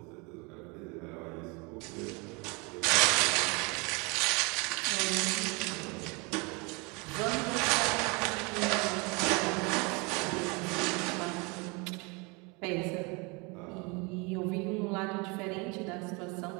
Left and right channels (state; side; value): quieter; left; 29.1 dB